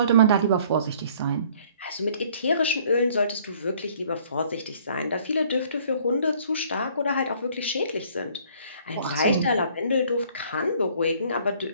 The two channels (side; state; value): both; inverted; correlation -0.57